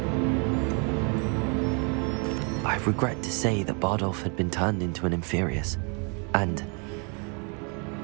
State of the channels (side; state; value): left; quieter; 35.5 dB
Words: I regret to say that Bardolph had been turned into an Inferius, and